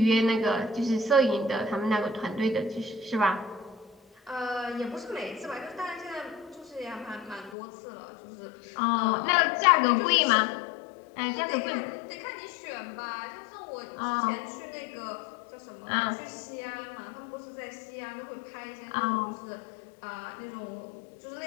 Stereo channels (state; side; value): drops out; right; at 7.6 s